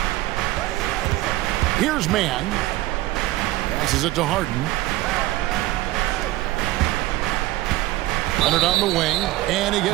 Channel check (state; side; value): quieter; left; 17.4 dB